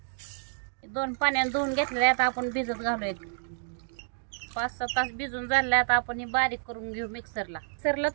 2 पाण्याने धुवून घेतलेले आहेत. आपण भिजत घालूया. 5-6 तास भिजून झाले. आता आपण हे बारीक करून घेऊ मिक्सरला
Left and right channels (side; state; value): left; silent; digital silence